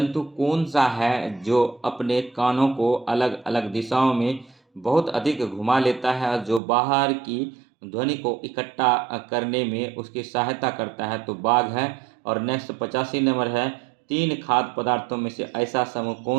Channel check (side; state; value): left; drops out; at 6.6 s